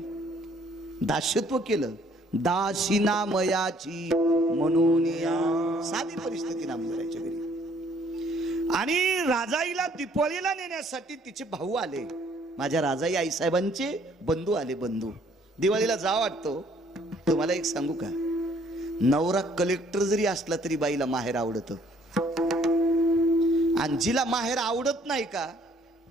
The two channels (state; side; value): normal; both; correlation 0.62